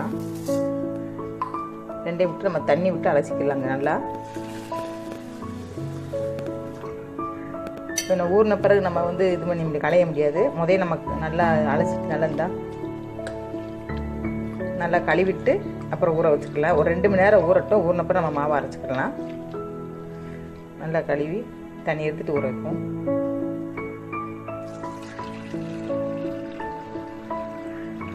ரெண்டையும் விட்டு நம்ம தண்ணி விட்டு அலசிக்கலாங்க நல்லா. இப்போ நான் ஊறின பிறகு நம்ம இது பண்ணி களைய முடியாது. முதல்ல நமக்கு நல்லா அலசிட்டு நல்லா கழுவிட்டு அப்புறம் ஊற வச்சுக்கலாம். ஒரு 2 மணி நேரம் ஊறட்டும். ஊறின பிறகு நம்ம மாவை அரைச்சிக்கலாம். நல்லா கழுவி தண்ணி எடுத்துட்டு ஊற வைப்போம்.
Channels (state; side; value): identical; both; correlation 1.00